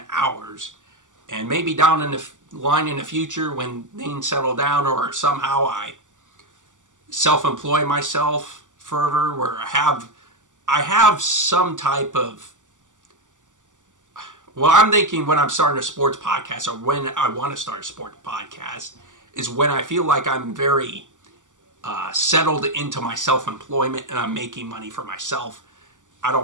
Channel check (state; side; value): late; left; 0.87 ms